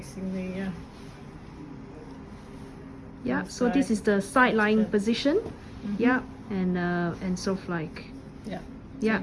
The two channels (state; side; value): identical; both; correlation 1.00